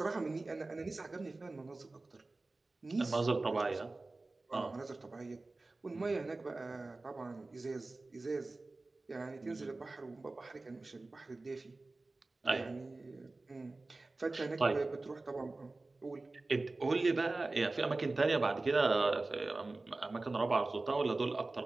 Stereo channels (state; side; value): quieter; left; 3.3 dB